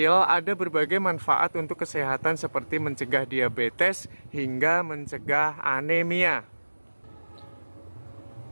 ada berbagai manfaat untuk kesehatan seperti mencegah diabetes hingga mencegah anemia.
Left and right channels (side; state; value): both; inverted; correlation -1.00